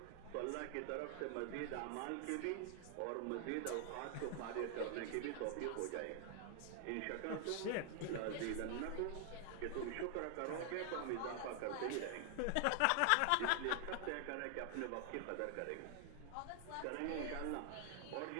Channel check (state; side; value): different; both; correlation 0.00